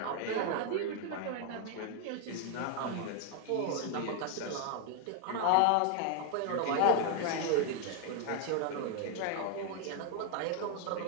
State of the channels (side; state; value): both; different; correlation 0.00